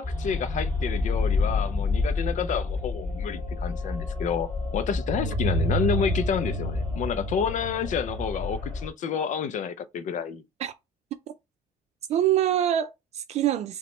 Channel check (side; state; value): both; normal; correlation 0.44